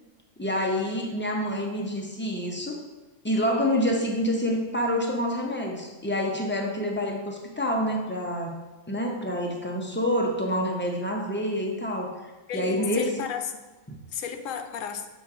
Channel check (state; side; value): normal; both; correlation -0.04